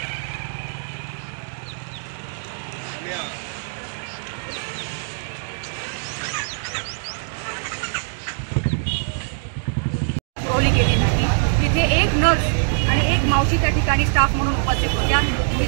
केली नाही। तिथे एक नर्स आणि एक मावशी त्या ठिकाणी स्टाफ म्हणून उपस्थित होत्या।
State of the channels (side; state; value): left; silent; 64 dB below the other